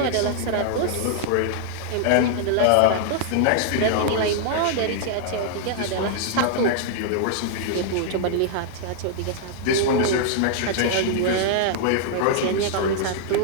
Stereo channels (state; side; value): different; both; correlation -0.01